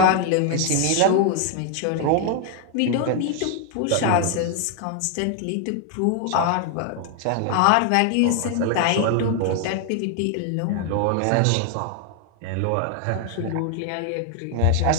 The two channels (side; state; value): both; different; correlation 0.00